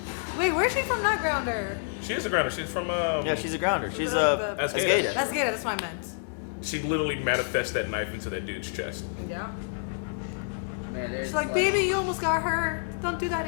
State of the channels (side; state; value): right; silent; digital silence